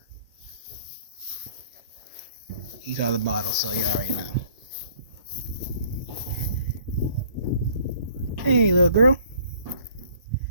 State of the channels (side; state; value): both; inverted; correlation -0.58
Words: He's on the bottle, so you already know. Hey, little girl.